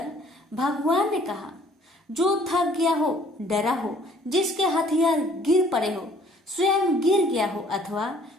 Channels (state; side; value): normal; both; correlation 0.58